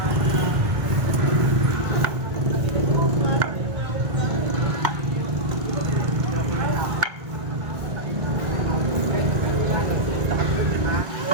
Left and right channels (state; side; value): late; left; 1.8 ms